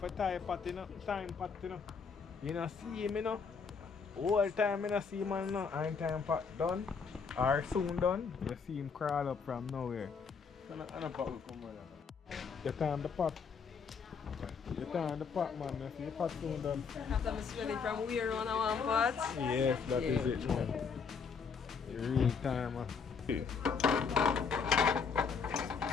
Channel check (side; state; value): right; quieter; 5.7 dB